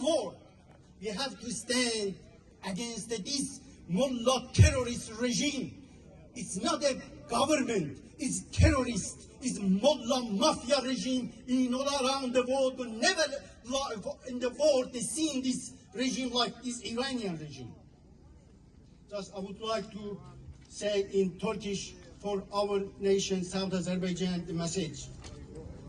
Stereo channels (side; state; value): both; identical; correlation 1.00